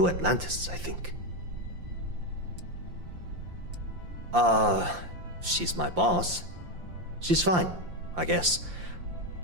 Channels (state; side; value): late; left; 5.7 ms